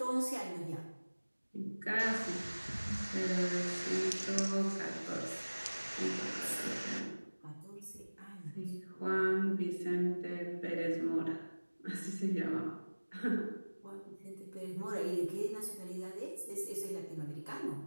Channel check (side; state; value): both; inverted; correlation -1.00